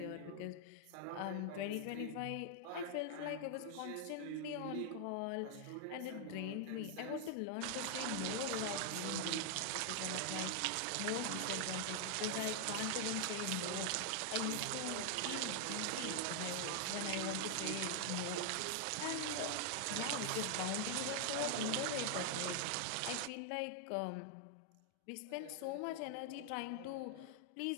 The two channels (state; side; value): different; both; correlation 0.00